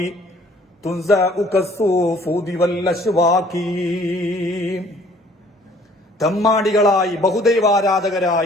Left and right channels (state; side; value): normal; both; correlation 0.57